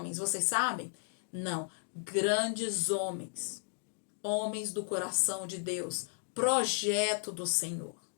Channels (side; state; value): right; silent; digital silence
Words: Vocês sabem? Não. Grandes homens. Homens do coração de Deus. Projeto do Senhor.